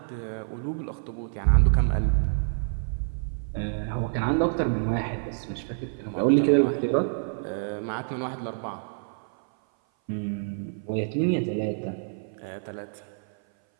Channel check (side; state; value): left; silent; 57 dB below the other